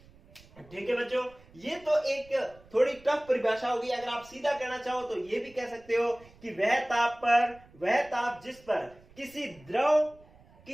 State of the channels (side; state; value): right; noise; rumble, 25 dB below the sound